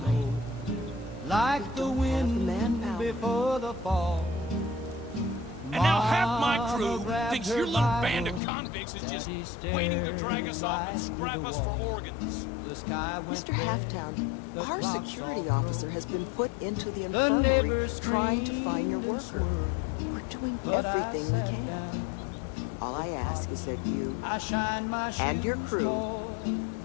like the wind before the fall. And now half my crew thinks your little band of convicts is just waiting to drag us off and scrap us for organs. Mr. Halftown, our security officer has been put into the infirmary trying to find your worker. We're doing everything we can. All I ask is that you and your crew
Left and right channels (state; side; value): drops out; right; at 8.4 s